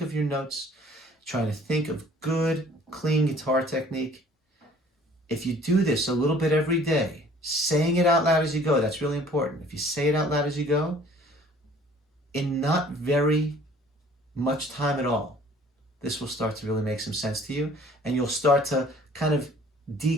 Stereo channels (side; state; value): both; normal; correlation 0.54